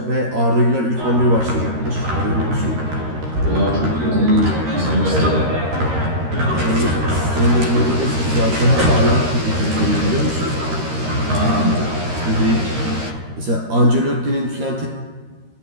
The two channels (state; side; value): late; left; 13 ms